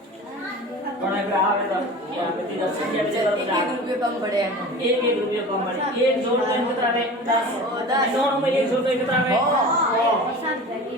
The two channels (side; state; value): both; normal; correlation 0.36